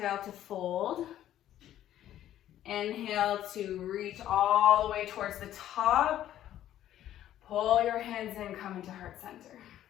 to fold. Inhale to reach all the way towards the top. Pull your hands in, come into heart center.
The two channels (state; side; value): quieter; right; 12.1 dB